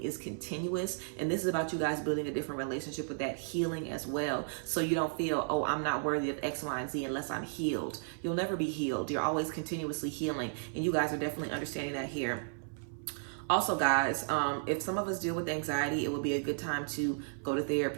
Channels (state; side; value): silent; left; 55 dB below the other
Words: continuous, and this is about you guys building a different relationship with that healing as well. So you don't feel, oh, I'm not worthy of X, Y, and Z unless I'm healed. You'll never be healed. You're always continuously healing, and you guys are definitely understanding that here. Also, guys, if some of us deal with anxiety, it would be a good time to go to